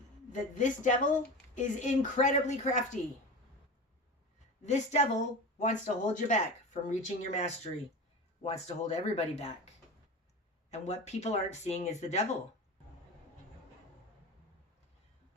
That this devil is incredibly crafty. This devil wants to hold you back from reaching your mastery. Wants to hold everybody back. And what people aren't seeing is the devil.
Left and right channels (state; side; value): normal; both; correlation 0.29